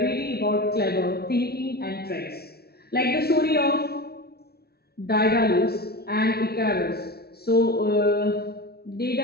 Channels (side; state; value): right; late; 0.45 ms